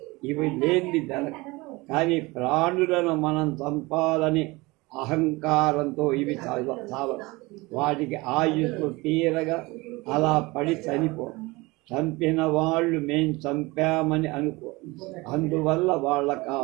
ఇవి లేని జరగ. కానీ ప్రాణులను మనం చంపాలని అహంకారంతో ఇవి చావ వాటికి ఆయుస్సు తీరగా అలా పడి చనిపో. చంపిన వాళ్ళు మేం చంపామని అనుకో. అందువల్ల వాళ్ళకు ఆ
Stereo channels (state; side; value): quieter; left; 22.9 dB